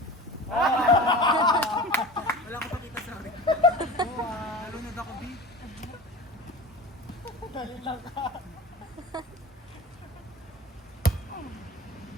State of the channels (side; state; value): both; normal; correlation 0.35